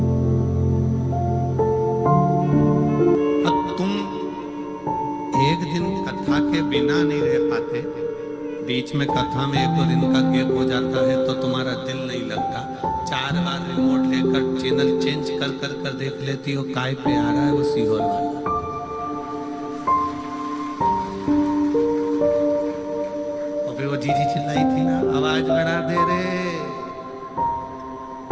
बिना नहीं रह पाते, बीच में कथा में 1-2 दिन का गैप हो जाता है तो तुम्हारा दिल नहीं लगता। 4 बार रिमोट लेकर चैनल चेंज कर कर कर देख लेती हो, काय पे आ रहा है वो सीहोर वाला। और फिर वो जीजी चिल्लाई थी ना, आवाज बढ़ा दे रे,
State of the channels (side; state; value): both; identical; correlation 1.00